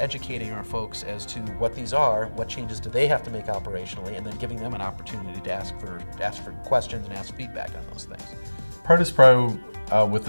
our folks as to what these are, what changes do they have to make operationally, and then giving them an opportunity to ask for questions and ask feedback on those things. Produce Pro with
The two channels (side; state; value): both; inverted; correlation -1.00